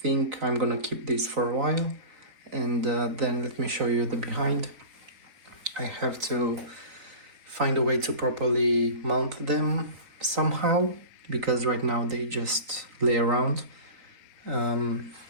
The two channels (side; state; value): left; late; 4.3 ms